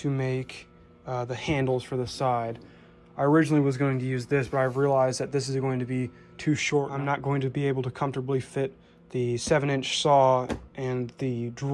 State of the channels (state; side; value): identical; both; correlation 1.00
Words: make the handles for the side. I originally was going to use this, but I've realized that this is going to be too short. I'm not going to be able to comfortably fit the 7-inch saw and the